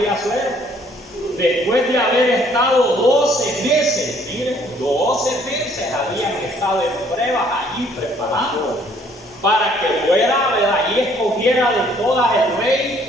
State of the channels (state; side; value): normal; both; correlation 0.62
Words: Asuero, después de haber estado 12 meses, miren, 12 meses habían estado en pruebas allí preparando para que fuera, ¿verdad?, y escogiera de todas el